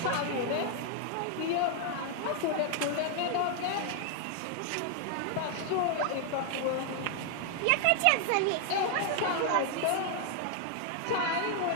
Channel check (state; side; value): different; both; correlation 0.00